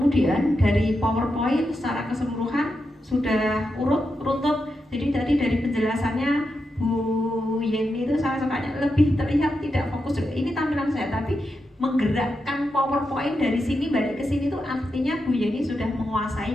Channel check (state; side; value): normal; both; correlation 0.87